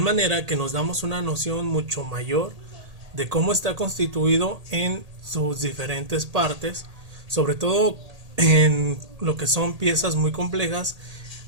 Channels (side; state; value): left; late; 1.8 ms